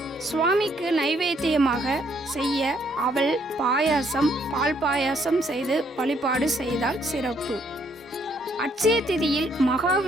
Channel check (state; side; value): normal; both; correlation 0.69